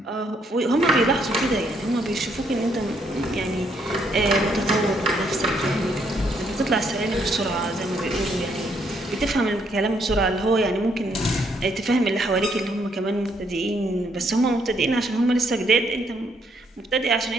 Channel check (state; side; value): normal; both; correlation 0.72